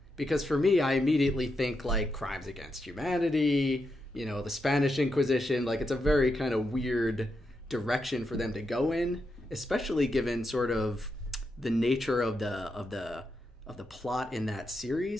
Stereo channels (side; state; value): both; normal; correlation 0.84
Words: Because for me, I immediately think like crimes against humanity, you know, the Spanish Inquisition. Like, it's a very kind of weird direction for them to go in, especially given sort of the nature of the plot in that